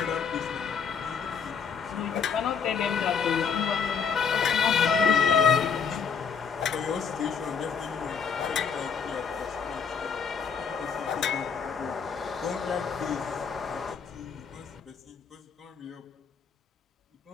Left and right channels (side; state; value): right; quieter; 6.4 dB